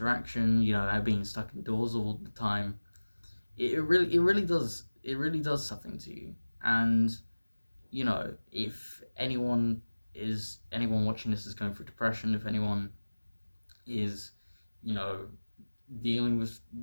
Being stuck indoors all the time. It really does something to you. And if anyone watching this is going through depression, if anyone is, you know, dealing with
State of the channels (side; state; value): both; inverted; correlation -1.00